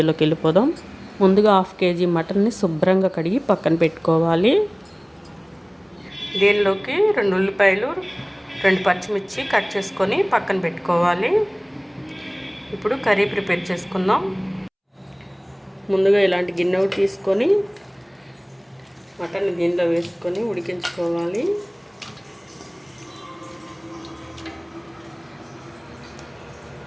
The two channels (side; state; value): both; identical; correlation 1.00